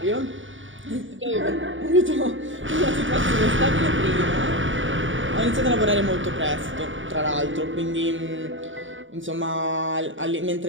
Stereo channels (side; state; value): left; late; 0.56 ms